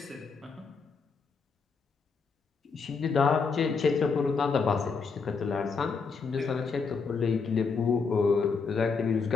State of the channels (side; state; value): right; quieter; 5.1 dB